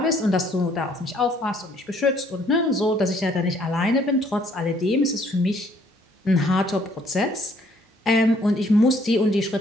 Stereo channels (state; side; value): normal; both; correlation 0.63